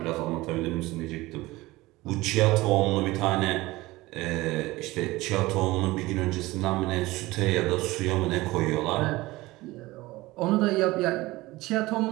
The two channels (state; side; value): quieter; left; 19.6 dB